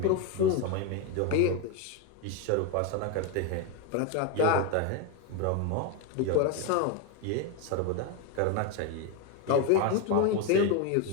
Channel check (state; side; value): different; both; correlation 0.02